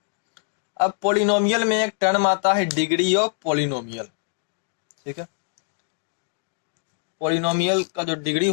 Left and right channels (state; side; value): silent; right; digital silence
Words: अब पॉलिनोमियल में एक टर्म आता है डिग्री ऑफ पॉलिनोमियल। ठीक है, पॉलिनोमियल का जो डिग्री